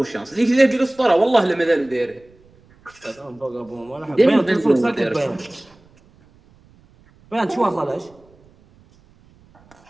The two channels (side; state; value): right; noise; rumble, 30 dB below the sound